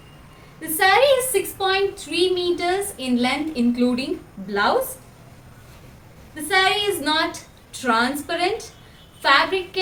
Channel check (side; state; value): both; identical; correlation 1.00